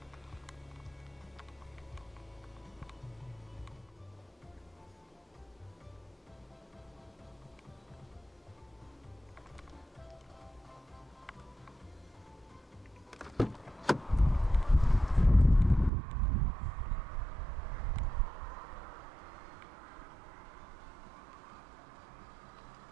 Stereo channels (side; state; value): left; drops out; at 15.9 s